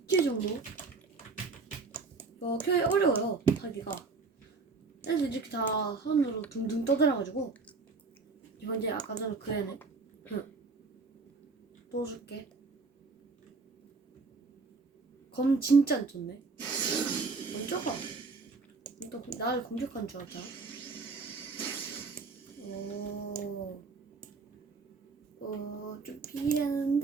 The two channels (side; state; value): left; quieter; 4.2 dB